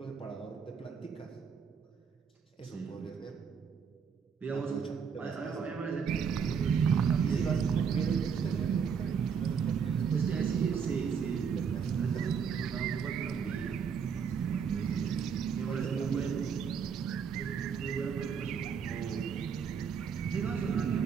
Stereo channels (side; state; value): left; quieter; 6.7 dB